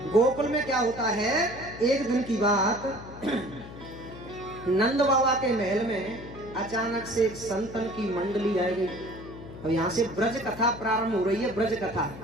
गोकुल में क्या होता है, एक दिन की बात, नंद बाबा के महल में अचानक से एक संतन की मंडली आई गई। और यहाँ से ब्रज कथा प्रारंभ हो रही है। ब्रज कथा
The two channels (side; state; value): left; noise; hum, 14 dB below the sound